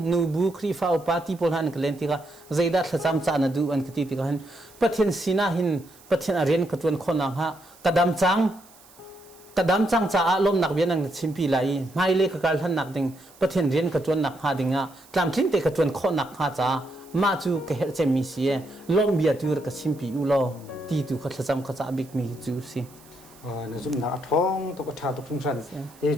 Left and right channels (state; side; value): noise; right; hiss, 25 dB below the sound